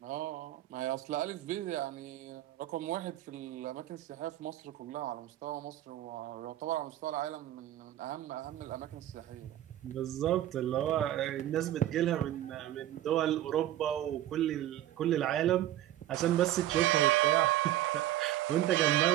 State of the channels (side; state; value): left; quieter; 13.4 dB